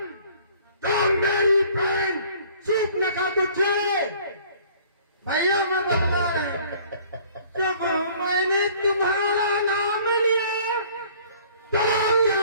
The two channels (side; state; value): both; inverted; correlation -0.54